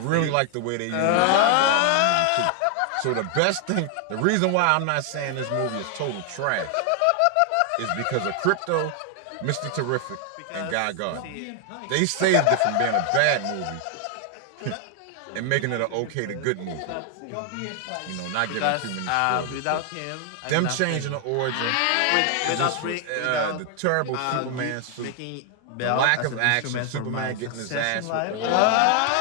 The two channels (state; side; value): different; both; correlation 0.00